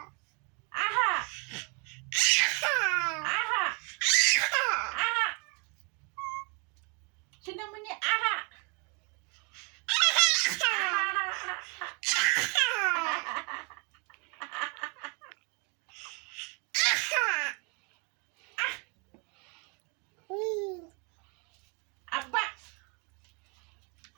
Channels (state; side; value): quieter; left; 34.2 dB